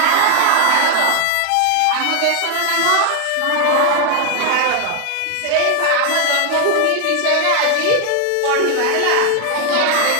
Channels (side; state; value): both; different; correlation 0.00